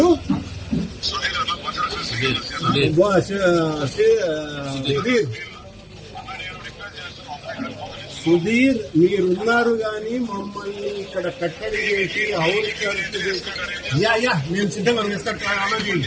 సుధీర్, మీరున్నారు కానీ మమ్మల్ని ఇక్కడ కట్టడి చేసి యా మేము సిద్ధంగా రెస్టార్ట్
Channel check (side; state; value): both; identical; correlation 1.00